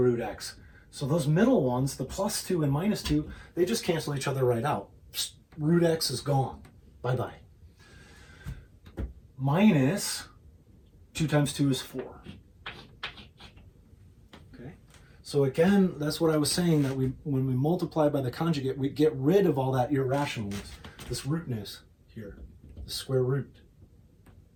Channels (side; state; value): both; identical; correlation 1.00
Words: x. So those middle ones, the plus 2 and minus 2, they just cancel each other right out. Psst, root x is gone. Bye-bye. Minus 2 times 2 is 4. Okay. So again, that's what I was saying, that when we multiply by the conjugate, we get rid of all that irrationalness, this rootness here, the square root.